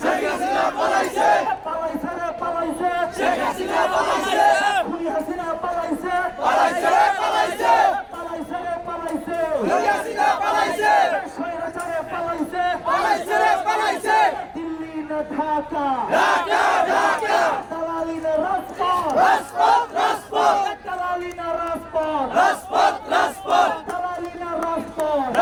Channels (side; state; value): both; identical; correlation 1.00